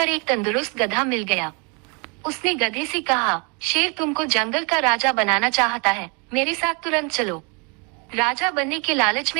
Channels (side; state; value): left; quieter; 32.7 dB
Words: एक तंदुरुस्त गधा मिल गया। उसने गधे से कहा, शेर तुमको जंगल का राजा बनाना चाहता है, मेरे साथ तुरंत चलो। राजा बनने के लालच